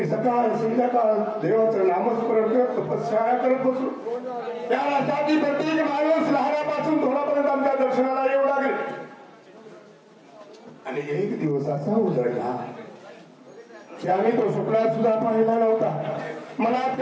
सकाळ संध्याकाळ देवाचं नामस्मरण करत तपश्चर्या करत बसलो. त्या राष्ट्रातील प्रत्येक माणूस लहानापासून थोडापर्यंत आमच्या दर्शनाला येऊ लागेल. आणि एक दिवस असा उजळला की आम्ही तो स्वप्नात सुद्धा पाहिला नव्हता. मनात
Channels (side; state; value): both; identical; correlation 1.00